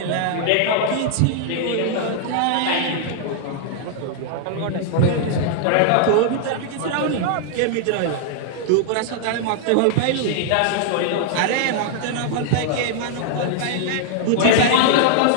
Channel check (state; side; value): different; both; correlation 0.00